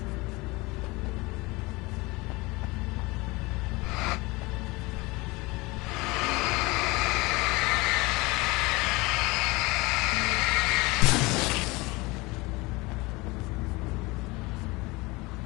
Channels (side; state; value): right; quieter; 23.6 dB